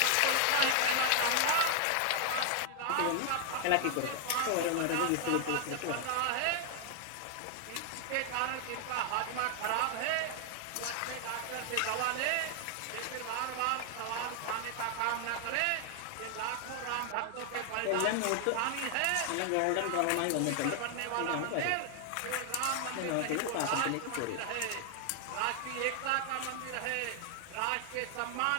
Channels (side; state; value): both; different; correlation 0.00